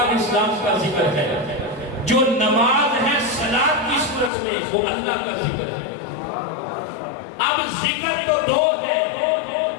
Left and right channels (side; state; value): right; drops out; at 4.3 s